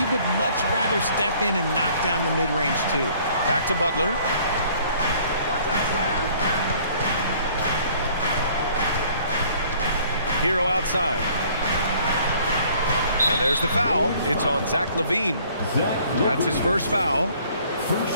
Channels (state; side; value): inverted; both; correlation -0.57